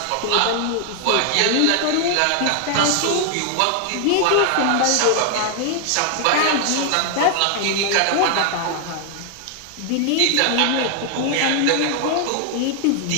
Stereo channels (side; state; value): both; different; correlation 0.00